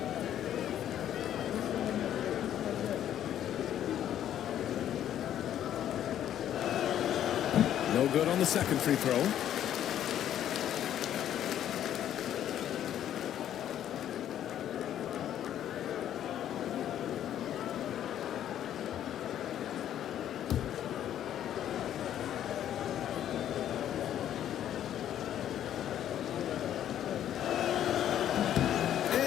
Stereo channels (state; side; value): quieter; right; 10.9 dB